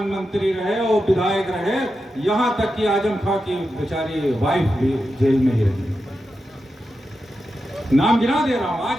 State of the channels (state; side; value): normal; both; correlation 0.89